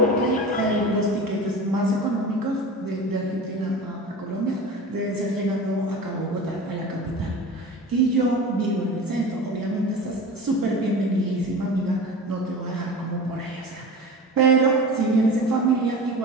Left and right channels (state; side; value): normal; both; correlation 0.33